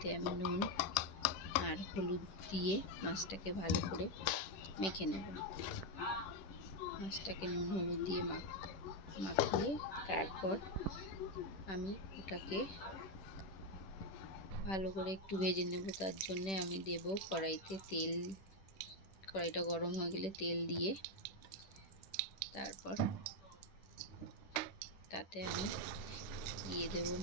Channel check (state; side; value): late; right; 10 ms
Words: আমি নুন আর হলুদ দিয়ে মাছটাকে ভালো করে মেখে নেব। মাছটাকে নুন হলুদ দিয়ে মাখিয়ে তারপর আমি ওটাকে ভালো করে একটু ভেজে নেব। তার জন্যে আমি দেব কড়াইতে তেল। কড়াইটা গরম হয়ে গেলে তেল দিয়ে তারপর তাতে আমি দিয়ে দেব